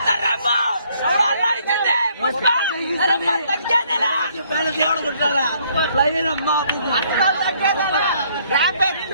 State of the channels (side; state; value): both; inverted; correlation -0.65